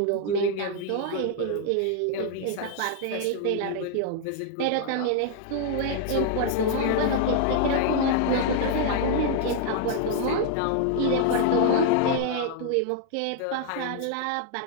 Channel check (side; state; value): both; different; correlation 0.00